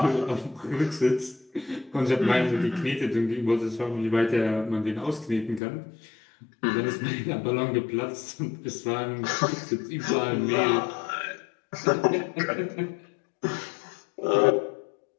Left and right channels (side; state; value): right; drops out; at 5.6 s